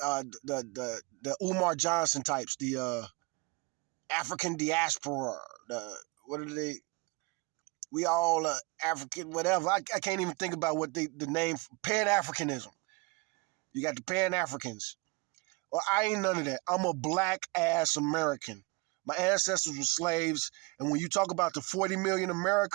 Umar Johnson types, the African diaspora, what are they? We all African, whatever. I can't even think about what the name, Pan-Africanism. You got the Pan-Africans. Well, I ain't none of that. I'm a black-ass American. My ancestors were slaves, and when you talk about the 40 million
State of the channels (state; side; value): quieter; left; 27.1 dB